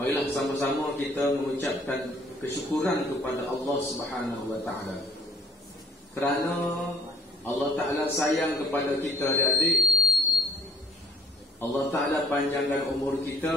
sama-sama kita mengucapkan kesyukuran kepada Allah Subhanahu wa taala. Kerana Allah Taala sayang kepada kita adik-adik. Allah Taala panjangkan umur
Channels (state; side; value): normal; both; correlation 0.56